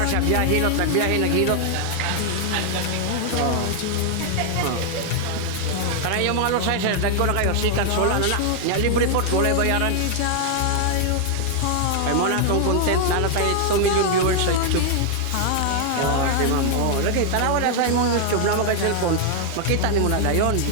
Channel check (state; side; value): different; both; correlation 0.00